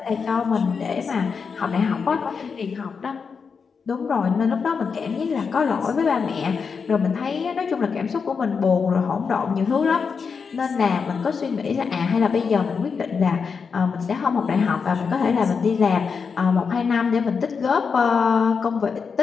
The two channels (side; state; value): right; quieter; 5.6 dB